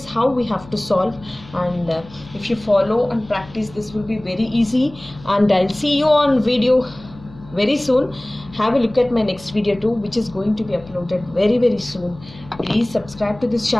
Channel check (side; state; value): left; noise; hum, 20 dB below the sound